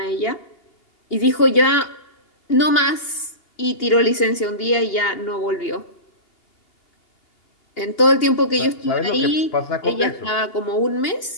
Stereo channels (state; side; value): late; right; 2.8 ms